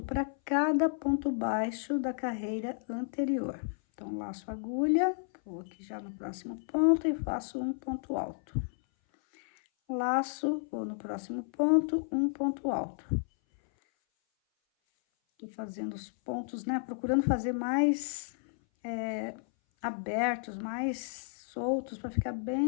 para cada ponto baixo da carreira anterior. Então, laço a agulha, vou aqui já no próximo ponto e faço um ponto alto. laço, vou no próximo ponto, um ponto alto. Tô fazendo os pontos, né, procurando fazer mais abertos, mais soltos, para ficar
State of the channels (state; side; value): silent; right; 56 dB below the other